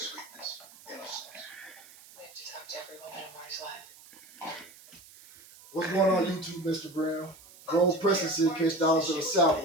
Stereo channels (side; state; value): right; noise; hiss, 21 dB below the sound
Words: sweetness, innocence. We have to talk to everyone in Mar's life. What's going on YouTube, Mr. Brown? Roguepresa said catch dogs to the south